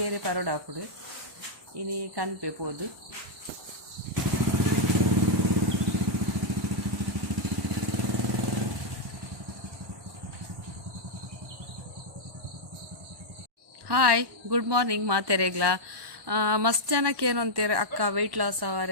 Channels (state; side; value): late; left; 1.2 ms